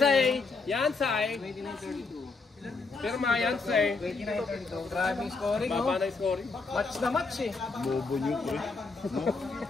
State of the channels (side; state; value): right; quieter; 4.1 dB